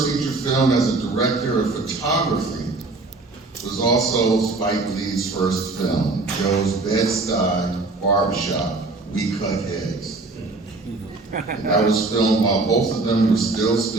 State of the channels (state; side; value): quieter; left; 3.4 dB